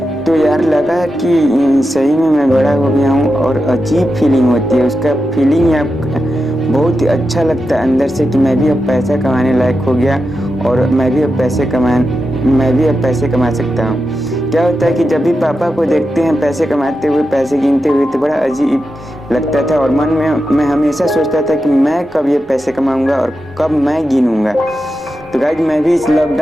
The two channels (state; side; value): normal; both; correlation 0.89